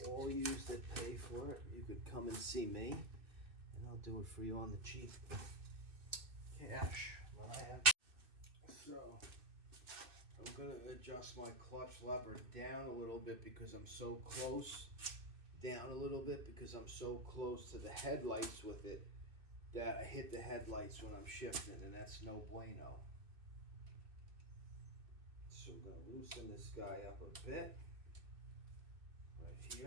all yous that pay for it, you could come and see me, and I'll do it for you on the cheap. Cash, but I have. So, I'm going to adjust my clutch lever down a little bit because I'm so close. Down a little bit because I'm so close to the headlights with it that I hit the headlights when I'm shifting, and that's no bueno. So we're going to loosen this guy up a bit. Right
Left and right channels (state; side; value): late; left; 2.6 ms